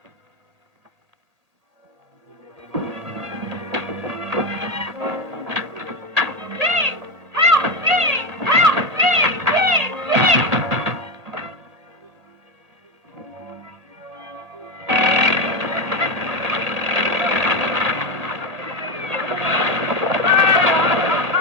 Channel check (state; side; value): late; left; 1.8 ms